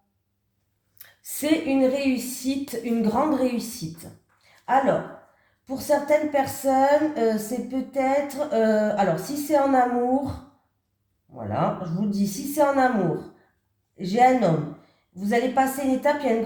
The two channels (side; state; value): both; identical; correlation 1.00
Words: C'est une réussite, une grande réussite. Alors, pour certaines personnes, c'est peut-être... alors, si c'est en amour, voilà, je vous le dis, si c'est en amour, j'ai un homme, vous allez passer une étape, il y a une